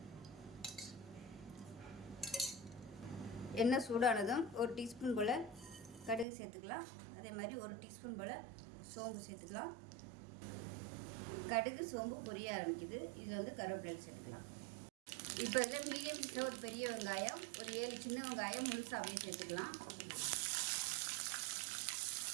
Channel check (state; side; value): drops out; left; at 6.2 s